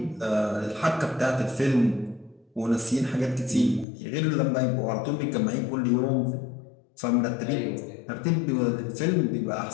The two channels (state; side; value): drops out; right; at 3.9 s